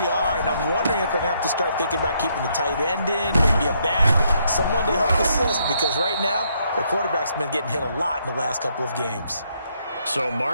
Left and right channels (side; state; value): both; inverted; correlation -0.73